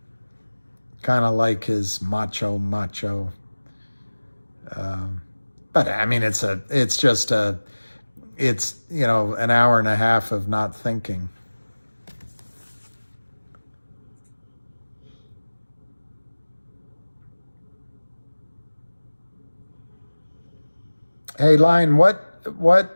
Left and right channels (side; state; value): both; inverted; correlation -1.00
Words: kind of like his macho. But I mean, it's an hour and a half of not thinking. Hey, Lion,